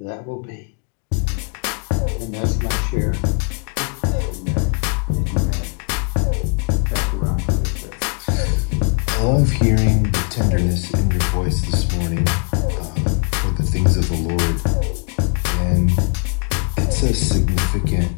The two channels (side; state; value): right; quieter; 38.0 dB